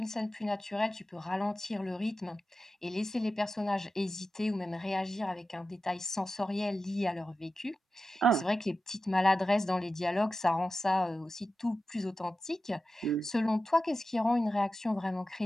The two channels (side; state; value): both; normal; correlation 0.93